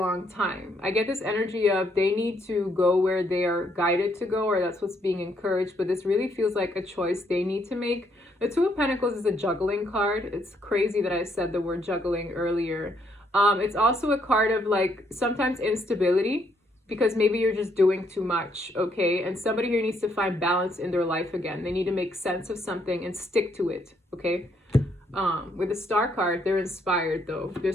time. I get this energy of they need to go where they are guided to go, or that's what's being encouraged, but this really feels like a choice they need to make. The 2 of Pentacles is a juggling card. It's crazy that I said the word juggling earlier. It's also a card of like sometimes instability because maybe you're just doing too much, okay? And somebody here needs to find balance in their life again. They need to make sense of something and stick to it, okay? With the Star card, they're inspired though.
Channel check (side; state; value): both; normal; correlation 0.72